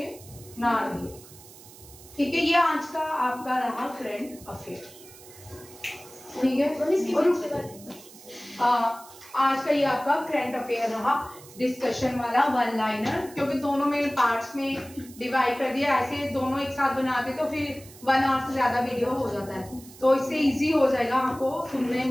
ना रहे। ठीक है, ये आज का आपका रहा करंट अफेयर। ठीक है, आज का ये आपका करंट अफेयर रहा, डिस्कशन वाला वन लाइनर, क्योंकि दोनों में पार्ट्स में डिवाइड कर दिया। ऐसे दोनों एक साथ बनाते तो फिर 1 आवर से ज्यादा वीडियो हो जाता है, तो इससे इजी हो जाएगा आपको सुनने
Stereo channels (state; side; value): noise; right; hiss, 20 dB below the sound